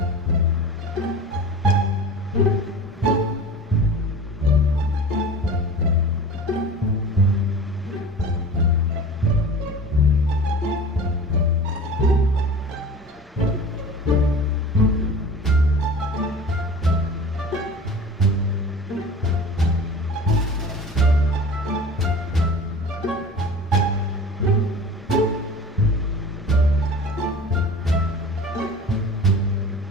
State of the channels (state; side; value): normal; both; correlation 0.38